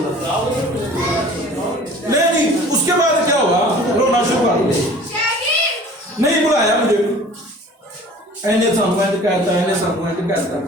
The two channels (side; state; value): both; normal; correlation 0.46